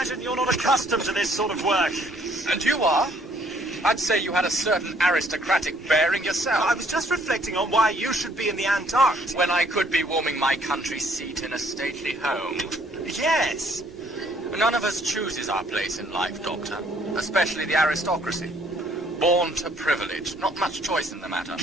imagine you're not accustomed to this sort of work. And you are? I'd say you had a certain aristocratic bearing yourself. I was just reflecting on why you should be in the Antarctic. When I could be warming my country seat in a stately home. Yes. None of us chooses our place in life, Doctor. Especially the aristocracy. Born to privilege. Not much choice in the matter.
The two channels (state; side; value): normal; both; correlation 0.63